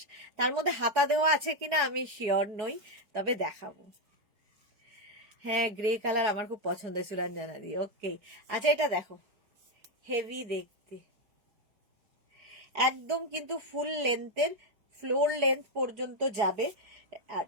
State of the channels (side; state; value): left; late; 4.8 ms